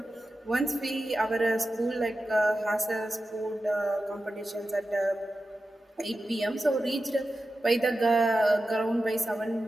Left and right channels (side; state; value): both; normal; correlation 0.92